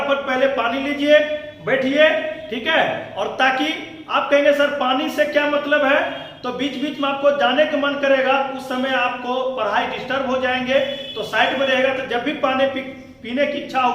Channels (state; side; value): identical; both; correlation 1.00